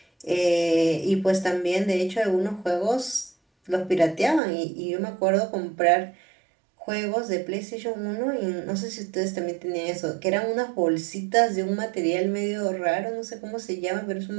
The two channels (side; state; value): left; drops out; at 4.4 s